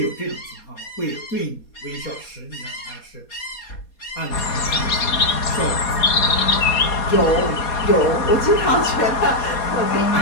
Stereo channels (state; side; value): late; right; 4.2 ms